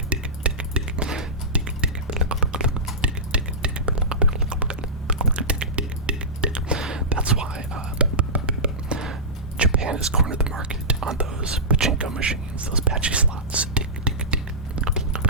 That's why Japan has cornered the market on those pachinko machines, those patchy slots.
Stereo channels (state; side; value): normal; both; correlation -0.16